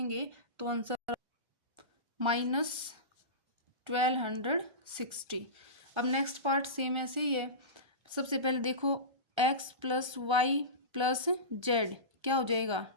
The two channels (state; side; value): late; left; 1.3 ms